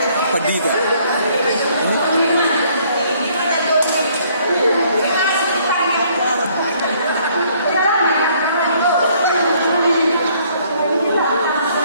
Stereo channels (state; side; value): inverted; both; correlation -0.63